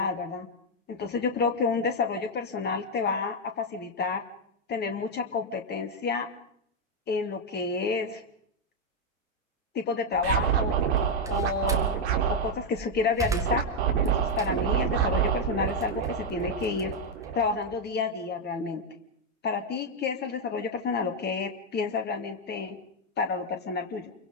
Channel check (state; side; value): normal; both; correlation 0.01